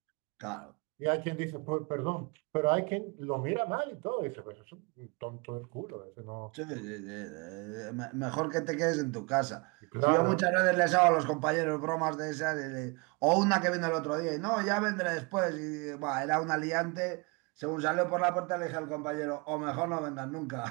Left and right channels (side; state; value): left; quieter; 29.7 dB